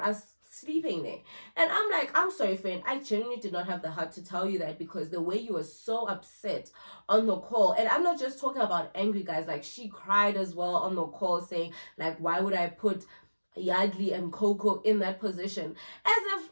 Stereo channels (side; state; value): both; inverted; correlation -1.00